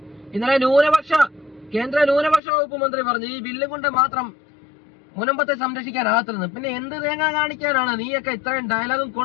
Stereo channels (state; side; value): drops out; right; at 2.4 s